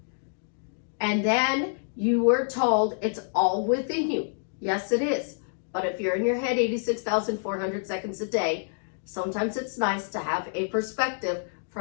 And then you were told it's all within you. Yes, it is. But if you're in your head 86,400 seconds a day, sometimes it's nice to have a perspective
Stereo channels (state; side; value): silent; right; digital silence